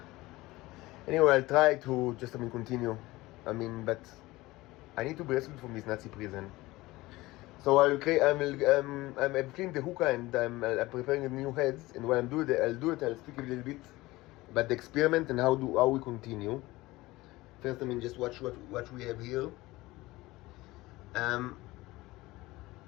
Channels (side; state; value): right; quieter; 19.5 dB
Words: anyway, I'll try to just, continue. But I need to be rescued from this Nazi prison. So I'm cleaning the hookah and I'm preparing the new heads. And when I'll speak a little bit about the experiment and how we continue. First, just watch what we have here.